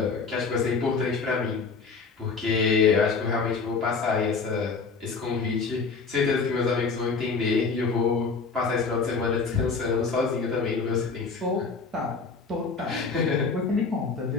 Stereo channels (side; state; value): right; quieter; 4.8 dB